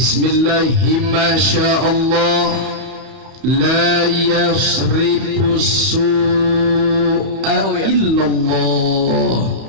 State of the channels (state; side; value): late; left; 31 ms